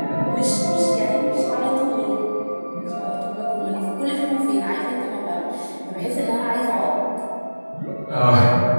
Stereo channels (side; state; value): both; inverted; correlation -1.00